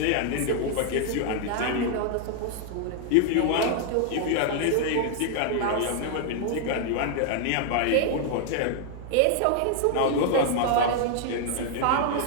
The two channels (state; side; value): different; both; correlation 0.00